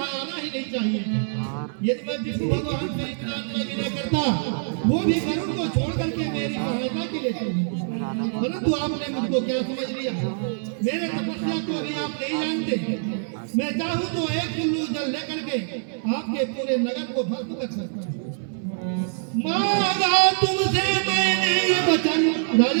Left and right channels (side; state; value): left; silent; 59 dB below the other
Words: आना ही नहीं चाहिए। यदि मैं विष्णु भगवान से इतना विनय करता वो भी गरुड़ को छोड़ करके मेरी सहायता के लिए चले, परंतु आपने मुझको क्या समझ लिया? मेरे तपस्या को अभी आप नहीं जानते। मैं चाहूँ तो एक चुल्लू जल लेकर के आपके पूरे नगर को भस्म कर सकता हूँ। मांगा तुमसे मैंने ये वचन